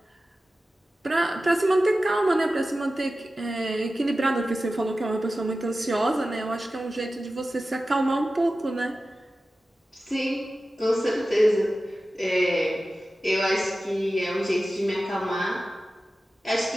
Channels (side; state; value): both; normal; correlation 0.94